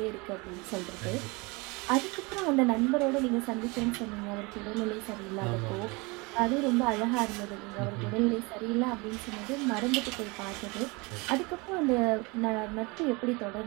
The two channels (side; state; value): left; quieter; 26.8 dB